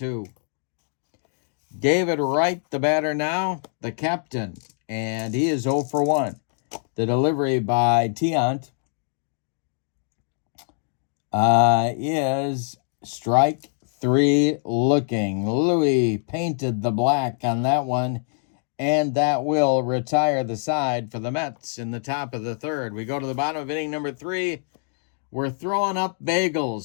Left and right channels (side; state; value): right; silent; digital silence